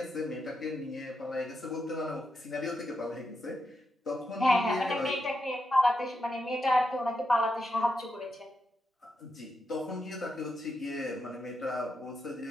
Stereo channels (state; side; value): normal; both; correlation 0.85